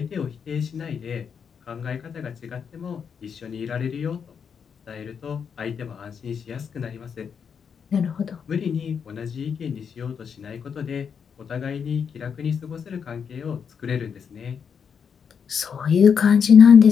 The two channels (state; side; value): quieter; right; 6.9 dB